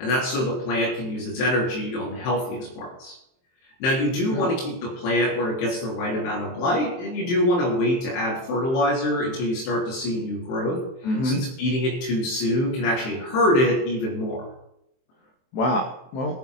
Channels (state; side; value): late; right; 23 ms